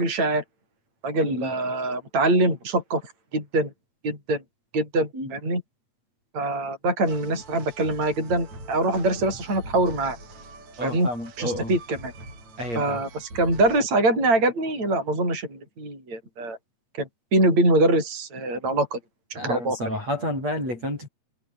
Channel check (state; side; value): late; left; 8.8 ms